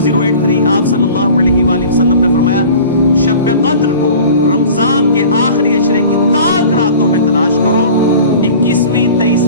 आप सल्लल्लाहु अलैहि वसल्लम ने फरमाया शब कद्र को रमजान के आखिरी अशरे की ताक रातों में तलाश करो, 21वीं,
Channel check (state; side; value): inverted; both; correlation -0.43